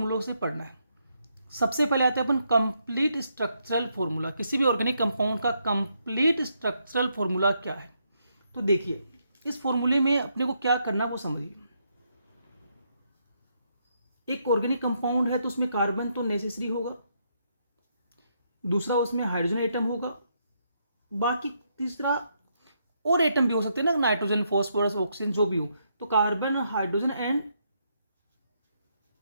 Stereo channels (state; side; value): inverted; both; correlation -0.77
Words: से पढ़ना है। सबसे पहले आते हैं अपन कंप्लीट स्ट्रक्चरल फॉर्मूला। किसी भी ऑर्गेनिक कंपाउंड का कंप्लीट स्ट्रक्चरल फॉर्मूला क्या है, तो देखिए इस फॉर्मूले में अपने को क्या करना वो समझिए। एक ऑर्गेनिक कंपाउंड है तो उसमें कार्बन तो नेसेसरी होगा, दूसरा उसमें हाइड्रोजन एटम होगा, बाकी तीसरा और एटम भी हो सकते हैं ना, नाइट्रोजन, फॉस्फोरस, ऑक्सीजन जो भी हो। तो carbon, hydrogen and